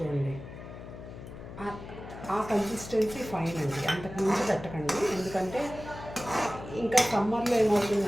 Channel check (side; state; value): left; noise; hum, 13 dB below the sound